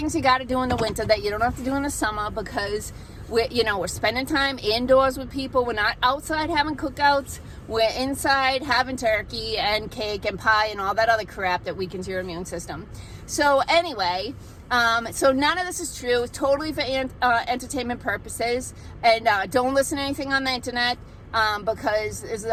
you got to do in the winter that you don't have to do in the summer, because we're spending time indoors with people. We're not outside having cookouts. We're inside having turkey and cake and pie and all that other crap that weakens your immune system. So anyway, so none of this is true. It's totally for entertainment purposes. And don't listen to anything on the internet because it's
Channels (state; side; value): identical; both; correlation 1.00